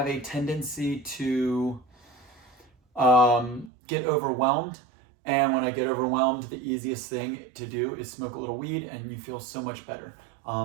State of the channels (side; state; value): left; drops out; at 3.7 s